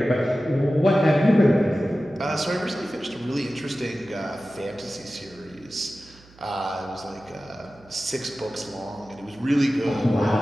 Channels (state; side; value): noise; right; hum, 25 dB below the sound